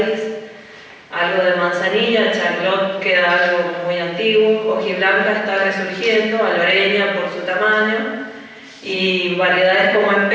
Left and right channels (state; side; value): identical; both; correlation 1.00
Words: algo de manzanilla, Charlotte queda algo muy antiguo, hojiblanca está resurgiendo, aloreña por su tamaño, y variedades como